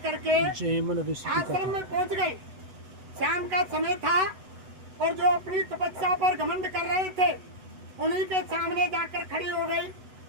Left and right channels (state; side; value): late; left; 8.0 ms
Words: आश्रम में पहुंच गई। शाम का समय था और जो अपनी तपस्या पर घमंड कर रहे थे उन्हीं के सामने जाकर खड़ी हो गई।